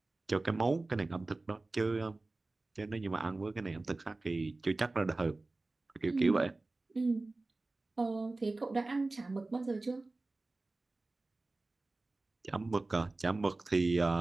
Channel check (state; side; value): quieter; left; 3.2 dB